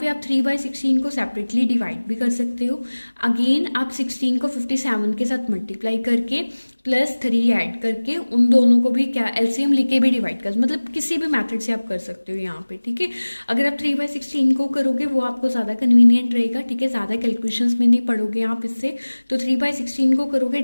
पे आप 3/16 को सेपरेटली डिवाइड भी कर सकते हो। अगेन आप 16 को 57 के साथ मल्टीप्लाई करके +3 ऐड करके उन दोनों को भी क्या LCM लेके भी डिवाइड कर, मतलब किसी भी मेथड से आप कर सकते हो यहाँ पे। ठीक है, अगर आप 3/16 को करोगे वो आपको ज़्यादा कन्वीनियंट रहेगा। ठीक है, ज़्यादा कैलकुलेशंस में नहीं पढ़ोगे आप इससे, तो 3/16 को करोगे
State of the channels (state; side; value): inverted; both; correlation -1.00